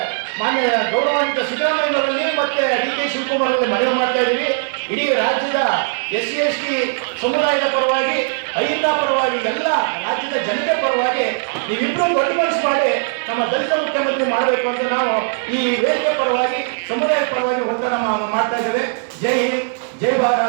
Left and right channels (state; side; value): silent; left; 65 dB below the other